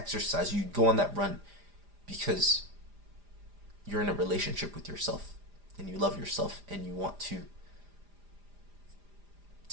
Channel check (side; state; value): left; late; 4.9 ms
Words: you go on that run because you're in a relationship with yourself and you love yourself and you want to